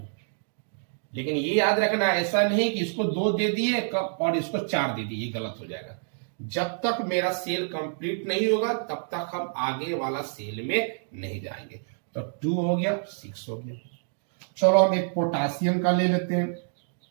लेकिन ये याद रखना, ऐसा नहीं कि इसको 2 दे दिए और इसको 4 दे दिए, ये गलत हो जाएगा। जब तक मेरा सेल कंप्लीट नहीं होगा तब तक हम आगे वाला सेल में नहीं जाएंगे। तो 2 हो गया, 6 हो गया। चलो हम एक पोटासियम का ले लेते हैं,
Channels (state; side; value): silent; left; digital silence